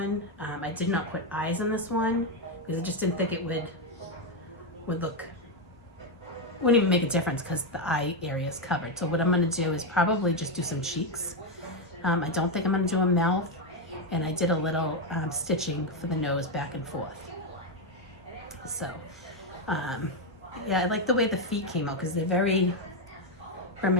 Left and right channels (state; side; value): normal; both; correlation 0.05